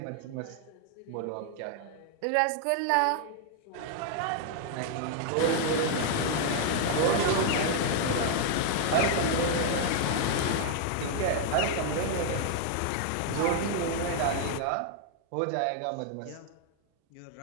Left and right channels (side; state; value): both; different; correlation 0.00